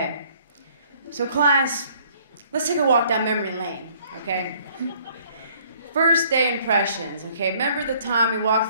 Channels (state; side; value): inverted; both; correlation -0.60